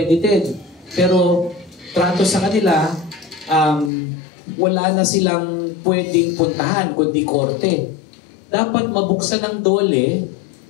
Pero trato sa kanila, wala na silang pwedeng puntahan kundi korte. Dapat mabuksan ng DOLE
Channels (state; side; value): drops out; right; at 3.9 s